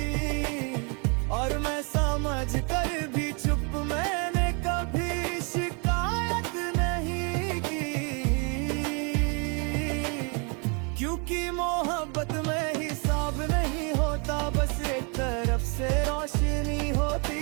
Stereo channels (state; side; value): quieter; left; 34.7 dB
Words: और मैं समझ कर भी चुप। मैंने कभी शिकायत नहीं की, क्योंकि मोहब्बत में हिसाब नहीं होता। बस एक तरफ से रोशनी होती